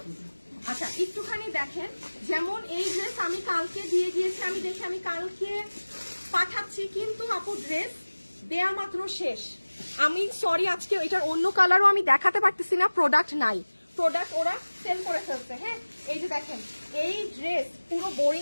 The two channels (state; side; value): inverted; both; correlation -1.00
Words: আচ্ছা, একটুখানি দেখেন, যেমন এই ড্রেস আমি কালকে দিয়ে গিয়েছি, আমি দেখি আমি কালকে পাঠাচ্ছি, কিন্তু আপু ড্রেস দেয়া মাত্র শেষ। আমি সরি, আজকে এটার অন্য কালারও আমি দেখাতে পারতেছি না, প্রোডাক্ট নাই, প্রোডাক্ট ওরা সেল করে ফেলছে। হ্যাঁ, এই যে দেখেন, এই ড্রেস পুরো